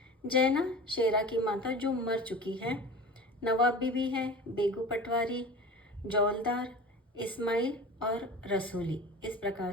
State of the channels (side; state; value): both; normal; correlation 0.35